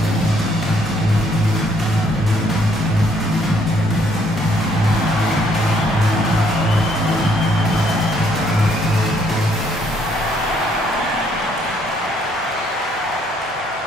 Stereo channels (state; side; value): normal; both; correlation 0.67